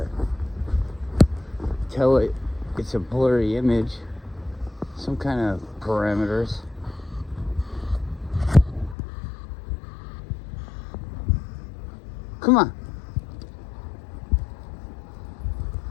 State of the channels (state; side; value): drops out; right; at 9.0 s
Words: tell it it's a blurry image. Some kind of parameters. Come on.